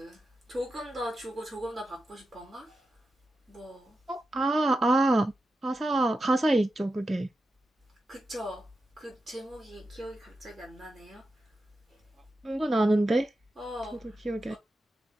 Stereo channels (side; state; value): both; normal; correlation 0.90